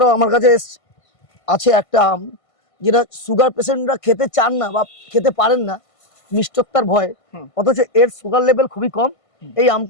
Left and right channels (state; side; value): late; right; 1.5 ms